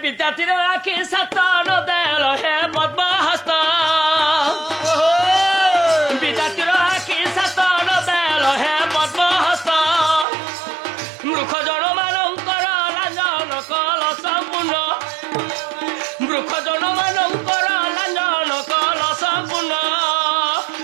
विद्यार्थी आखि सतन देल हे पद्म हस्त विद्यार्थी आखि सतन देल हे पद्म हस्त मूर्ख जन मानकर लांजन कल संपूर्ण मूर्ख जन मानकर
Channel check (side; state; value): left; drops out; at 10.2 s